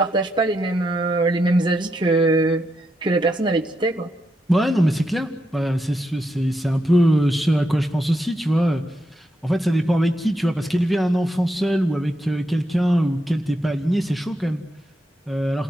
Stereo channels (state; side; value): normal; both; correlation 0.83